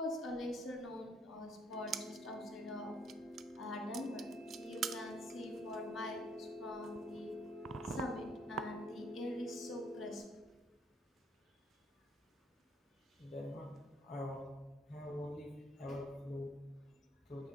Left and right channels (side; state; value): both; normal; correlation 0.67